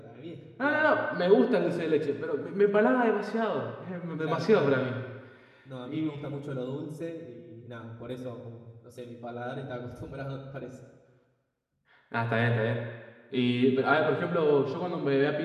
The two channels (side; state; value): both; identical; correlation 1.00